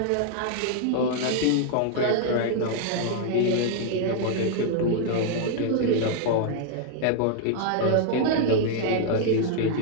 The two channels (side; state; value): both; different; correlation 0.00